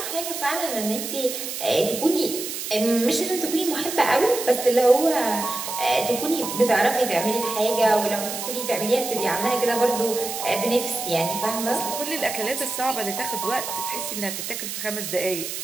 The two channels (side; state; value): right; noise; hiss, 6 dB below the sound